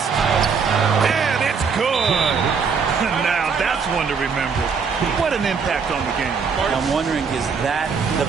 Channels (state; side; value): quieter; left; 5.8 dB